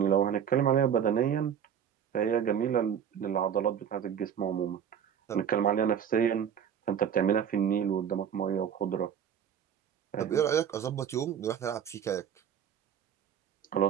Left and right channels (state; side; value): quieter; left; 8.5 dB